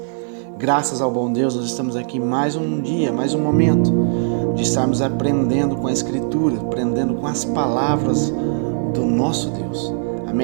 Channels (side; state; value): left; silent; 57 dB below the other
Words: Graças ao bom Deus, nós estamos aqui mais um dia, mais um momento de estarmos aprendendo com a Escritura, aprendendo com as palavras do nosso Deus.